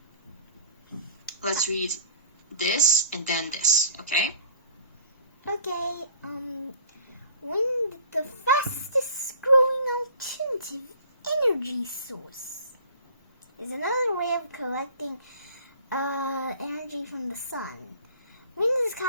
Let's read this and then this, okay? Okay, wind, the fastest growing alternative energy source, is another way of collecting energy from the sun. Wind is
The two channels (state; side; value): inverted; both; correlation -0.46